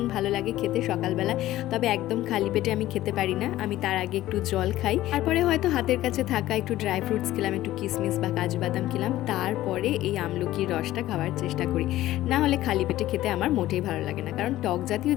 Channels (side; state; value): right; quieter; 15.0 dB